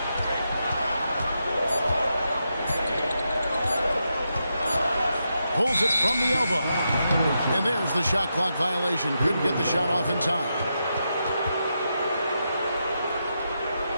Pulls it from the elbow. And there's the shot clock violation. Couldn't get the shot off in time.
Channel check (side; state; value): both; inverted; correlation -0.85